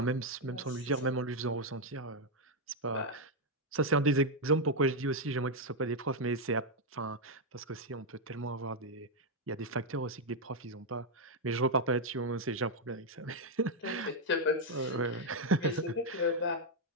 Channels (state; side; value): normal; both; correlation 0.01